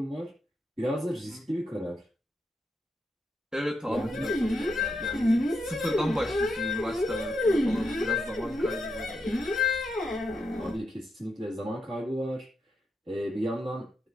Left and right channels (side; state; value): both; normal; correlation 0.82